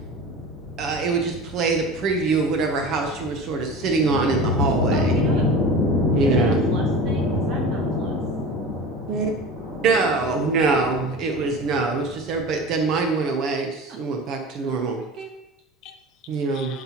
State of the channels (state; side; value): normal; both; correlation 0.33